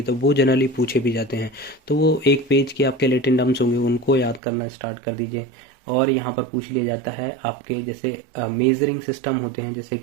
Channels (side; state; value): left; drops out; at 4.4 s